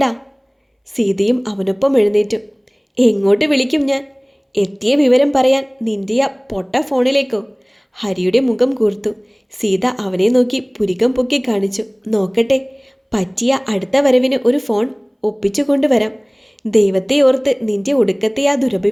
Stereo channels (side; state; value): both; identical; correlation 1.00